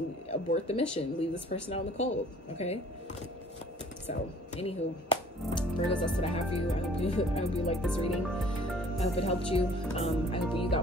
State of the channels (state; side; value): normal; both; correlation 0.54